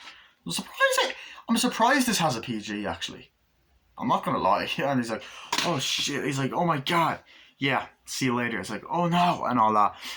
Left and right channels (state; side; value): identical; both; correlation 1.00